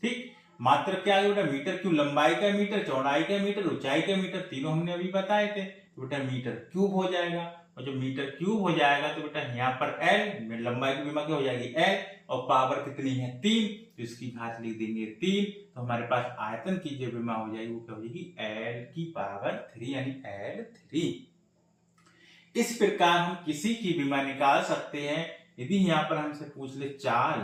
ठीक, मात्रक क्या है बेटा मीटर क्यूब, लंबाई का मीटर, चौड़ाई का मीटर, ऊंचाई का मीटर, तीनों हमने अभी बताए थे, तो बेटा मीटर क्यूब हो जाएगा, और जब मीटर क्यूब हो जाएगा तो बेटा यहाँ पर एल, लंबाई की विमा क्या हो जाएगी एल, और पावर कितनी है 3, तो इसकी घात लिख देंगे 3, तो हमारे पास आयतन की जो विमा हो जाएगी वो क्या हो जाएगी एल की पावर 3 यानी L3। इस प्रकार हम किसी की विमा निकाल सकते हैं। यदि यहाँ पर हमसे पूछ ले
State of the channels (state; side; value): identical; both; correlation 1.00